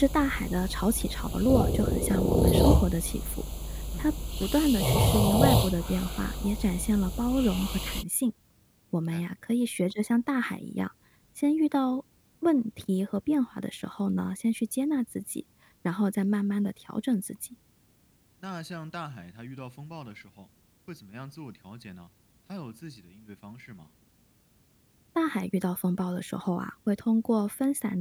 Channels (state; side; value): identical; both; correlation 1.00